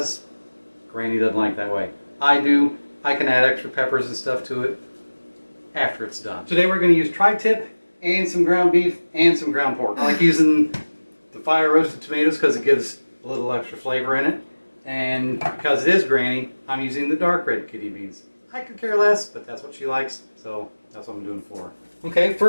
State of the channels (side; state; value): both; inverted; correlation -1.00